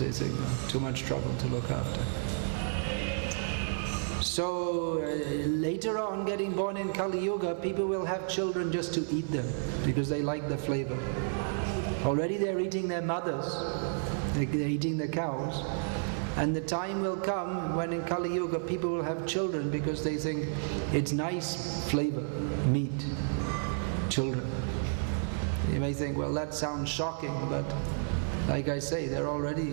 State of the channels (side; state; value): left; silent; 57 dB below the other